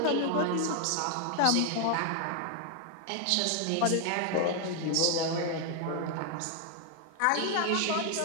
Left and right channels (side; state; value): both; different; correlation 0.00